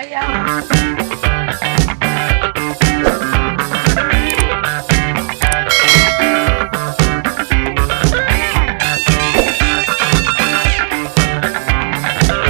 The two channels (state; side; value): silent; left; digital silence